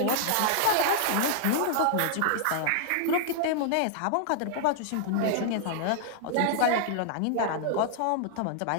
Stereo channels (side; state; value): both; different; correlation -0.01